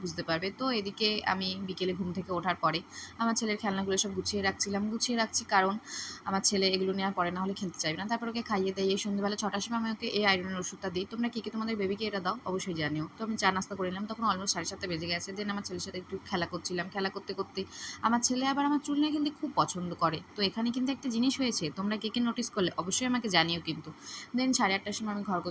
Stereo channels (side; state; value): both; identical; correlation 1.00